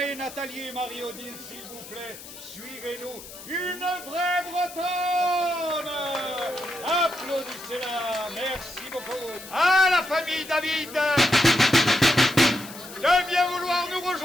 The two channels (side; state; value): left; noise; hiss, 15 dB below the sound